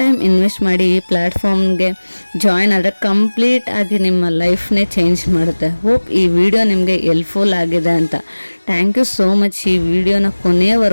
ಟೈಮ್ ಇನ್ವೆಸ್ಟ್ ಮಾಡಿ ಈ ಪ್ಲ್ಯಾಟ್ಫಾರ್ಮ್ಗೆ ಜಾಯಿನ್ ಆದರೆ ಕಂಪ್ಲೀಟ್ ಆಗಿ ನಿಮ್ಮ ಲೈಫ್ನೇ ಚೇಂಜ್ ಮಾಡುತ್ತೆ. ಹೋಪ್ ಈ ವಿಡಿಯೋ ನಿಮಗೆ ಹೆಲ್ಪ್ಫುಲ್ ಆಗಿದೆ ಅಂತ. ಥ್ಯಾಂಕ್ ಯು ಸೋ ಮಚ್ ಈ ವಿಡಿಯೋನ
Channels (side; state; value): both; inverted; correlation -1.00